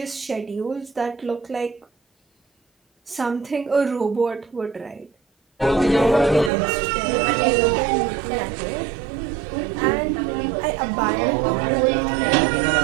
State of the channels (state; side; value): drops out; left; at 6.5 s